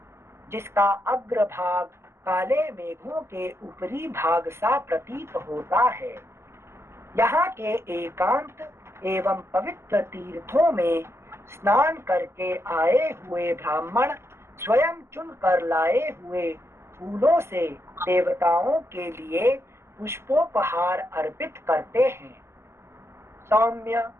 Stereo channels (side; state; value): left; late; 0.12 ms